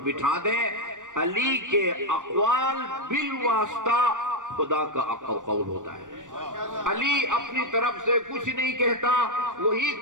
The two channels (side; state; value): left; late; 0.87 ms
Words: بٹھا دیں۔ علی کے اقوال بالواسطہ خدا کا قول ہوتا ہے۔ علی اپنی طرف سے کچھ نہیں کہتا، وہی